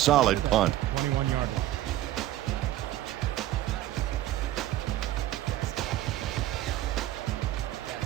punt. 21-yard line.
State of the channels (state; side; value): quieter; left; 14.1 dB